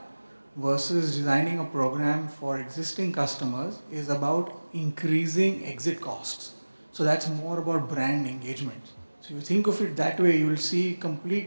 versus designing a program for existing customers is about increasing exit costs. So that's more about brand engagement. So you think of it that way, you will see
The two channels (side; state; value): both; inverted; correlation -1.00